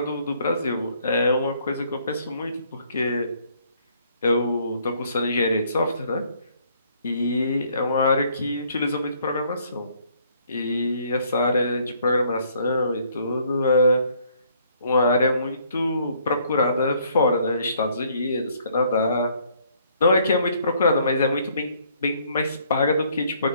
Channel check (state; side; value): inverted; both; correlation -0.64